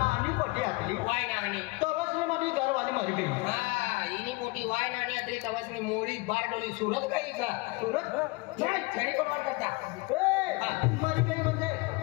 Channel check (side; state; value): right; quieter; 24.8 dB